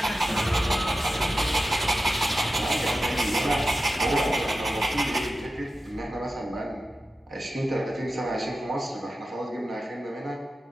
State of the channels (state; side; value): normal; both; correlation 0.92